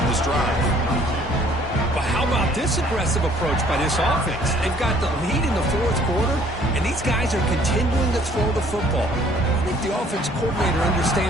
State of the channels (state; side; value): normal; both; correlation 0.59